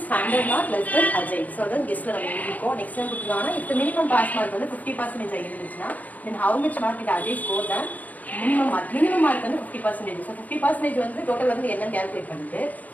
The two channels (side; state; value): right; late; 0.078 ms